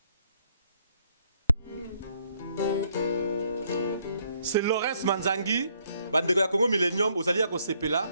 C'est Lawrence Manzangi, bandeko ya Congo Millennium, ozali ya kosepela,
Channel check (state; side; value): inverted; both; correlation -0.69